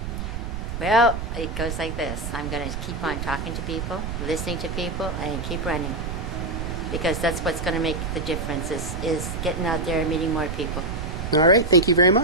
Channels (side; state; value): right; noise; rumble, 6 dB below the sound